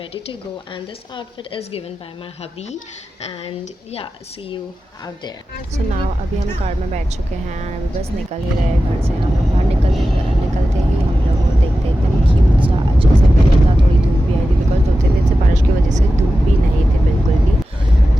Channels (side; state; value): both; normal; correlation 0.93